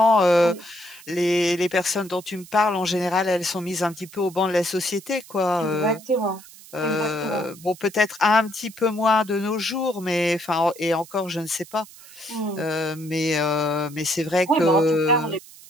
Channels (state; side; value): noise; right; hiss, 20 dB below the sound